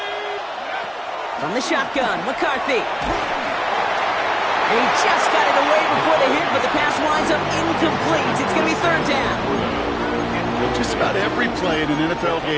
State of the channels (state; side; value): identical; both; correlation 1.00